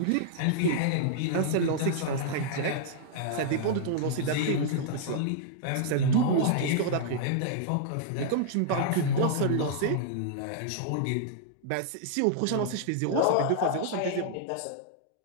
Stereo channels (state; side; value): different; both; correlation -0.01